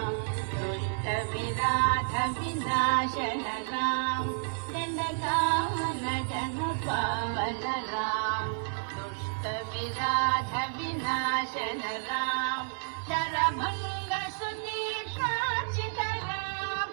दुष्ट विनाथ विनाशन राम, दंडकावन जन पावन राम, दुष्ट विनाथ विनाशन राम, शरभंग सुतीक्षाचित राम,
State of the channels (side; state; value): left; silent; 57 dB below the other